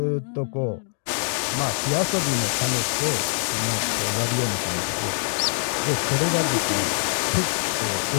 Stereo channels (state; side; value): silent; right; digital silence